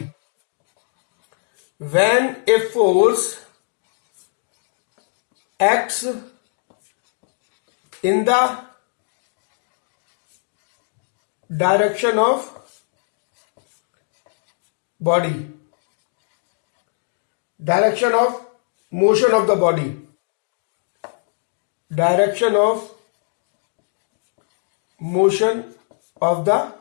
When a force acts in the direction of body, direction of motion of the body, direction of motion of the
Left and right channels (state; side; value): silent; right; 64 dB below the other